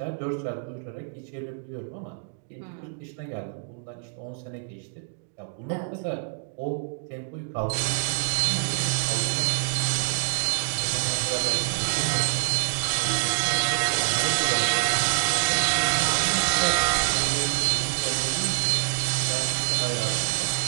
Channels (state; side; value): silent; left; digital silence